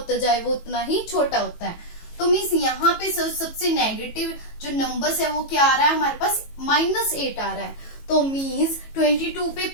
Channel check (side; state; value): right; late; 18 ms